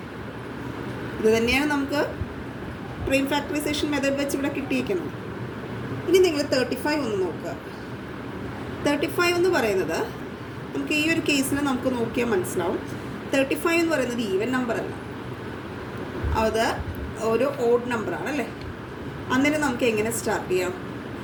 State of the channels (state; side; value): identical; both; correlation 1.00